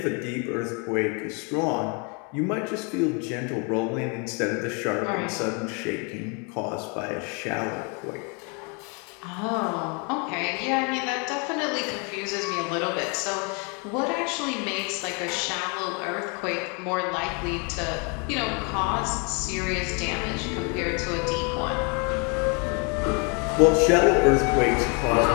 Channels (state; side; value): quieter; right; 34.3 dB